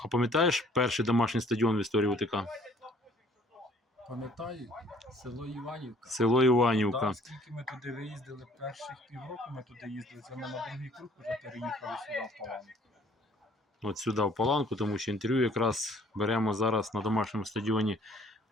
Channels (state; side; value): normal; both; correlation 0.58